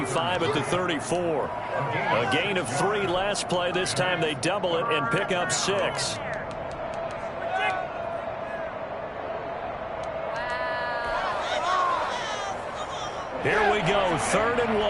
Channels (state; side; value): identical; both; correlation 1.00